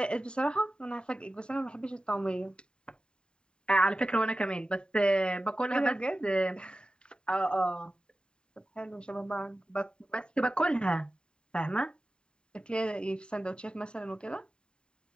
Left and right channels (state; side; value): late; right; 0.050 ms